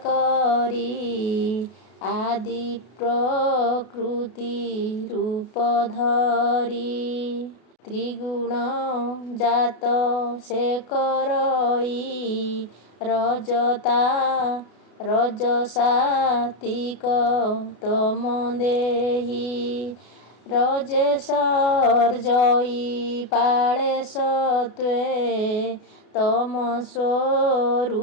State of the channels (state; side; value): late; right; 32 ms